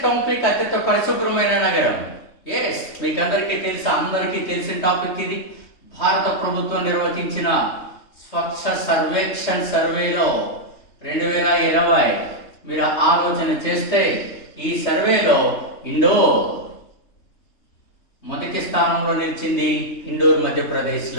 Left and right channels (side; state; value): right; late; 3.3 ms